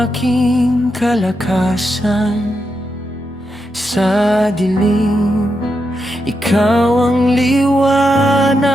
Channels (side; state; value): both; normal; correlation 0.85